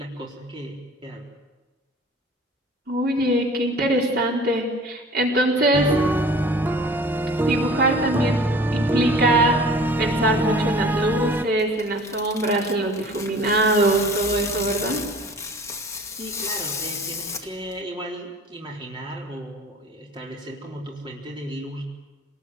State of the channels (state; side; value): normal; both; correlation 0.46